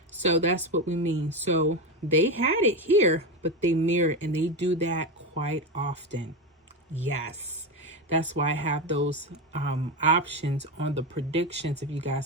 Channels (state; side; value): normal; both; correlation 0.15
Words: so that's what we mean. So they had it here, but they mirrored, and they do that quite often. Yes, that's why I have those options on the predictions. If you